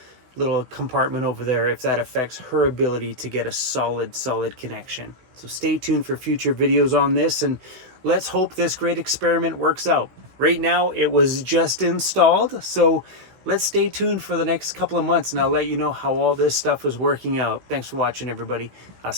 compartment over there, if that affects her ability to get a solid connection. So stay tuned for future videos on this and let's hope this great experiment works out. Right now it was just installed, so let's stay tuned for the next couple of months and I'll let you know how all this stuff is working out. Thanks for watching, everybody. I'll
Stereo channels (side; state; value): left; late; 16 ms